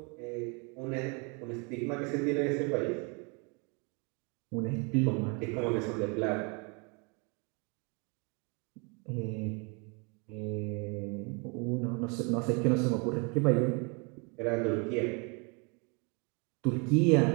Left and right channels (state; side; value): quieter; left; 32.9 dB